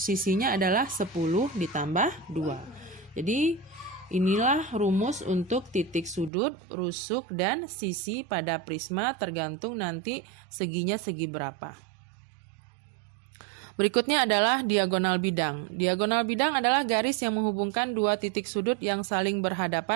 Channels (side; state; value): left; drops out; at 6.3 s